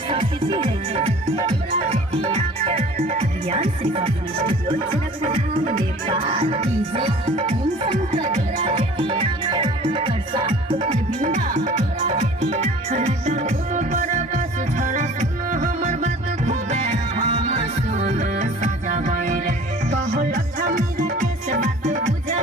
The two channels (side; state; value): both; normal; correlation 0.46